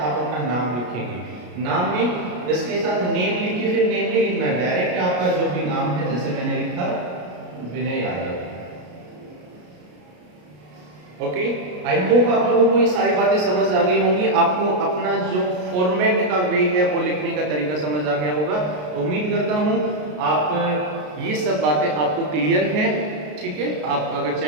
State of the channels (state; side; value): late; left; 33 ms